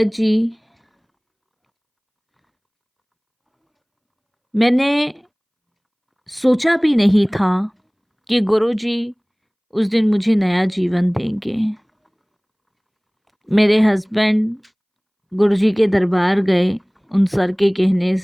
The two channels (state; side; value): identical; both; correlation 1.00